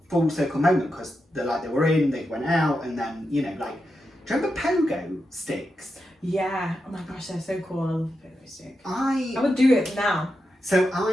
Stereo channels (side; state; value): both; normal; correlation 0.87